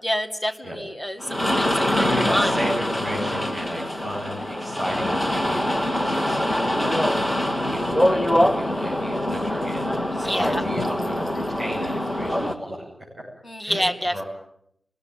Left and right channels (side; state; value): both; normal; correlation 0.94